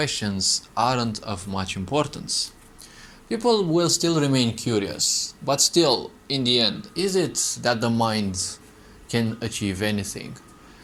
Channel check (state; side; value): identical; both; correlation 1.00